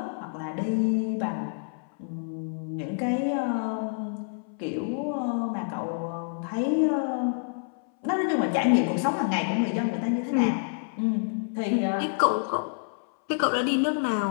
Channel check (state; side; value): silent; right; 60 dB below the other